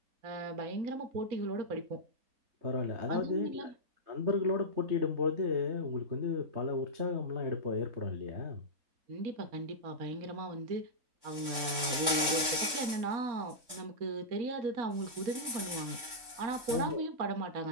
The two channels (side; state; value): left; late; 3.6 ms